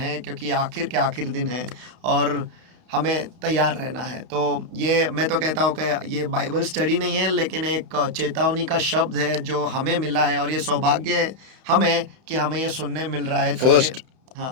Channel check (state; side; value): late; left; 31 ms